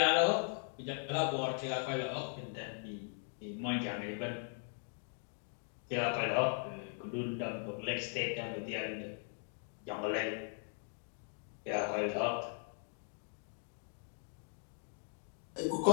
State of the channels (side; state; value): right; silent; 52 dB below the other